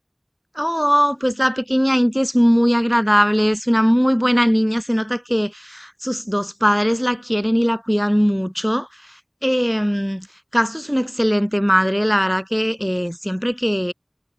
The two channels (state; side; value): identical; both; correlation 1.00